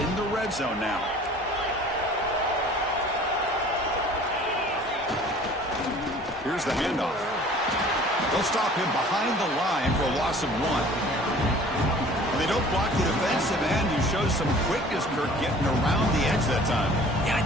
the red zone now. Here's the handoff. They'll stop him behind the line for a loss of 1. They don't block the defensive end, who shows some quickness, Kirk, getting around the edge that time. Yeah,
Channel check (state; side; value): normal; both; correlation 0.49